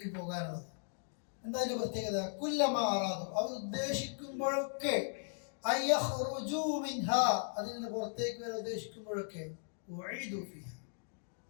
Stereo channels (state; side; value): silent; right; digital silence